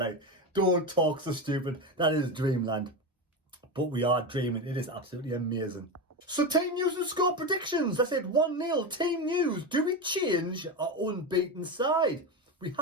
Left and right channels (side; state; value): both; normal; correlation 0.17